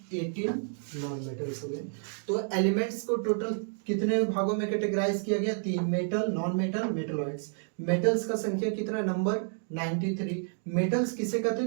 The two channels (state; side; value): silent; left; 58 dB below the other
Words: 18 नॉन मेटल्स हो गए। तो एलिमेंट्स को टोटल कितने भागों में कैटेगराइज किया गया? 3, metal, non metal, metalloids. Metals का संख्या कितना? नंबर 93। मेटल्स किसे कहते